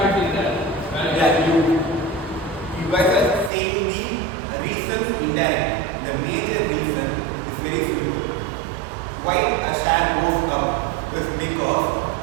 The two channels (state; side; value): drops out; left; at 3.5 s